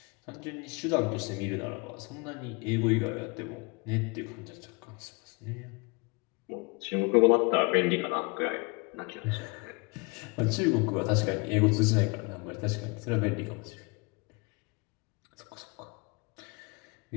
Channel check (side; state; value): right; quieter; 28.7 dB